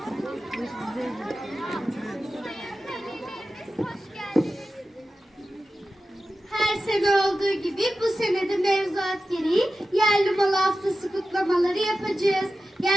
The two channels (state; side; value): normal; both; correlation 0.93